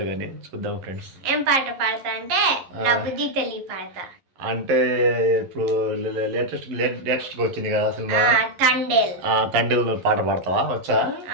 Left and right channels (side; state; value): left; late; 11 ms